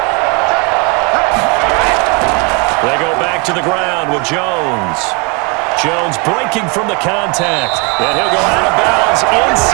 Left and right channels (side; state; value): left; quieter; 28.5 dB